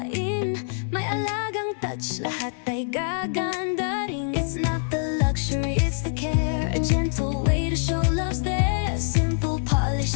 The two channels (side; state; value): right; silent; digital silence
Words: may alagang touch, lahat ay gaganda rin. It's not the luxury, it's the care, a gentle way to show love's there. Simple polish,